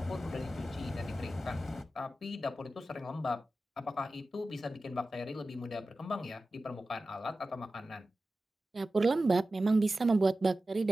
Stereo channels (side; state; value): both; normal; correlation 0.94